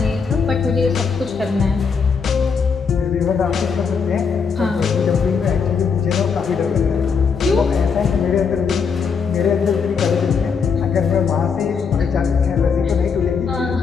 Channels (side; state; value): right; quieter; 5.8 dB